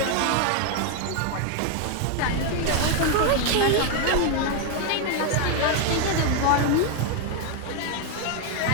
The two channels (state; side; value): different; both; correlation 0.01